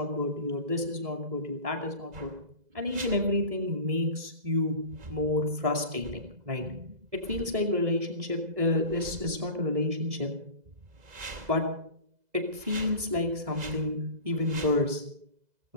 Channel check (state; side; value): late; left; 2.0 ms